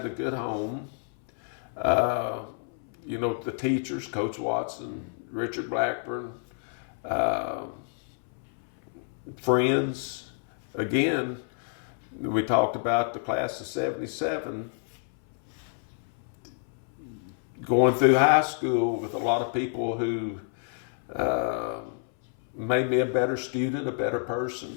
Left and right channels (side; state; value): right; silent; 59 dB below the other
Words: a good home, the teachers, Coach Watson, Richard Blackburn, friends. Again, we talked about the class of 77, going through high school with a lot of people who made me a better student, a better